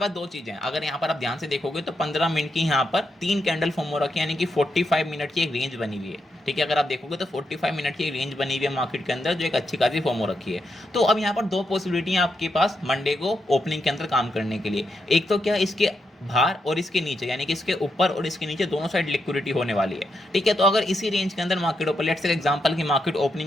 दो चीज़ें हैं। अगर यहाँ पर आप ध्यान से देखोगे तो 15 मिनट की यहाँ पर 3 कैंडल फॉर्म हो रखी है, यानी कि 45 मिनट की एक रेंज बनी हुई है। ठीक है, अगर आप देखोगे तो 45 मिनट की एक रेंज बनी हुई है मार्केट के अंदर, जो एक अच्छी खासी फॉर्म हो रखी है। तो अब यहाँ पर दो पॉसिबिलिटी हैं आपके पास मंडे को ओपनिंग के अंदर काम करने के लिए। एक तो क्या, इसके बाहर और इसके नीचे, यानी कि इसके ऊपर और इसके नीचे दोनों साइड लिक्विडिटी होने वाली है। ठीक है, तो अगर इसी रेंज के अंदर market open, let's say example की मार्केट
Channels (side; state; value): both; normal; correlation 0.83